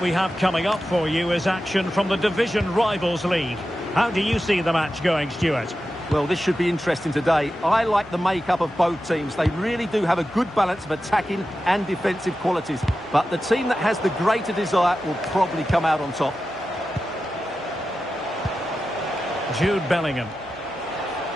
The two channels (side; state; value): both; normal; correlation 0.92